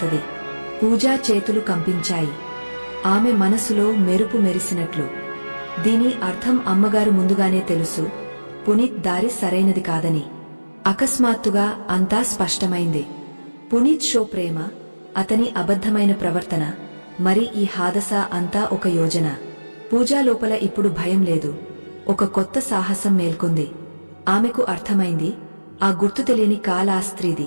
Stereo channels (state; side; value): inverted; both; correlation -1.00